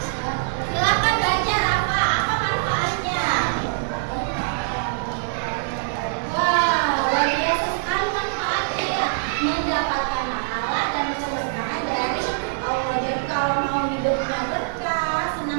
Silakan baca Rafa, apa manfaatnya? Wah, luar biasa sekali manfaatnya ya. Mendapatkan pahala dan keberkahan dari Allah. Jadi kalau mau hidupnya berkah,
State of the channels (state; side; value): silent; left; 58 dB below the other